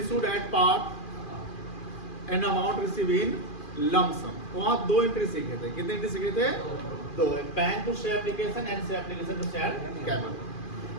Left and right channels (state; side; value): late; right; 2.4 ms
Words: at part and amount receive in lump sum, वहां दो एंट्री सीखे थे। कितने एंट्री सीखे थे? दो, bank to share application and share application to share capital.